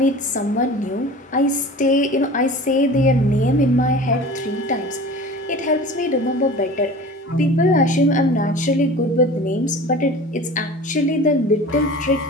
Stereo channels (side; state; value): both; normal; correlation 0.39